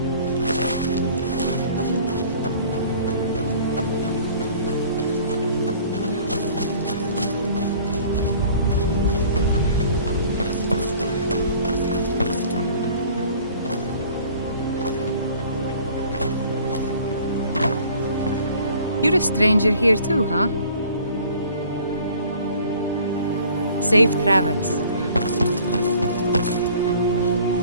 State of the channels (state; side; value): inverted; both; correlation -0.51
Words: You're a stranger here too, huh? Safe travels.